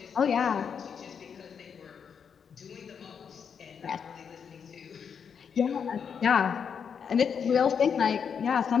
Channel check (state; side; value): quieter; right; 6.9 dB